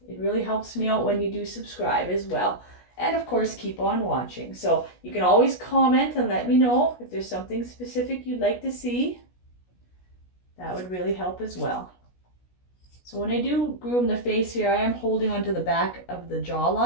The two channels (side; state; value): right; late; 16 ms